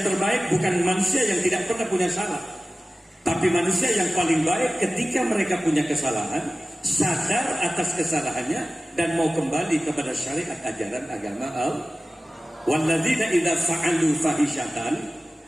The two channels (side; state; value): both; normal; correlation 0.96